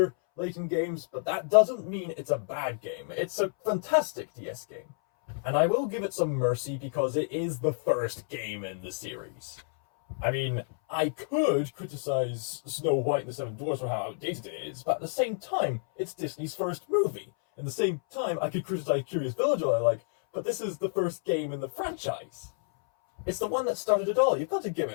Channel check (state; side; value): silent; right; 58 dB below the other